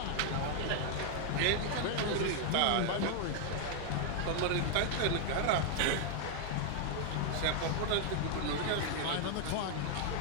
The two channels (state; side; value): different; both; correlation 0.00